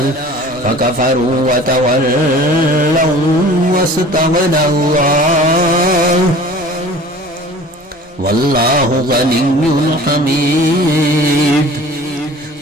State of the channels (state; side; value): normal; both; correlation 0.44